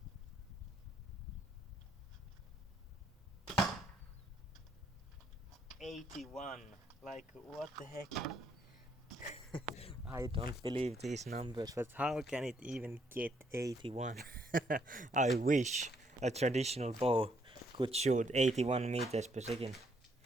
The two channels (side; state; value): both; normal; correlation 0.71